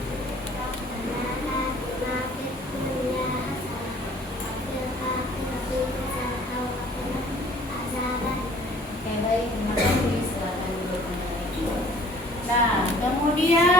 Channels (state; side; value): normal; both; correlation 0.53